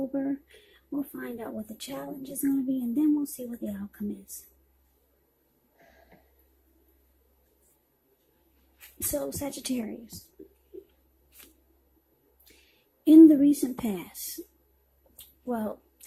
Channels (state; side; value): identical; both; correlation 1.00